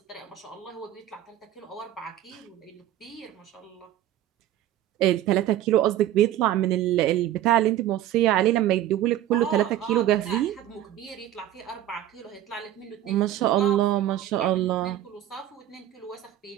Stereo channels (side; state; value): left; quieter; 12.6 dB